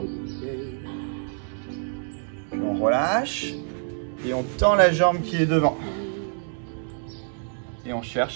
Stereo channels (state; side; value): silent; left; 61 dB below the other